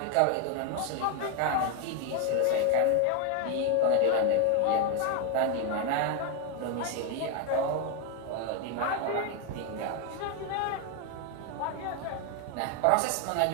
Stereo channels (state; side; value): different; both; correlation 0.01